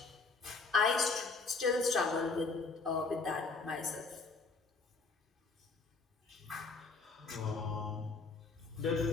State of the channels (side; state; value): right; quieter; 4.2 dB